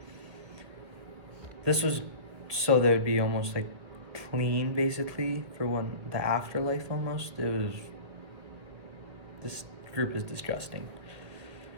This was so they would be almost like clean, basically, for when the afterlife almost. This group is disgusting.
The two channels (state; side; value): late; left; 1.7 ms